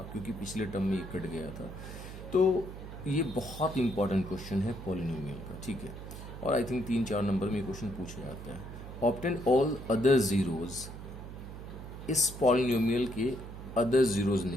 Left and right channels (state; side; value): noise; right; hum, 11 dB below the sound